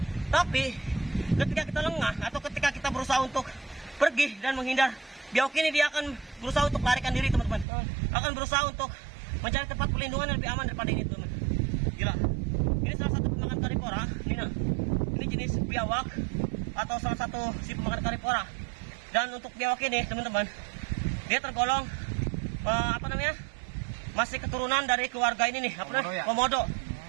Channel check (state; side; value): drops out; left; at 7.7 s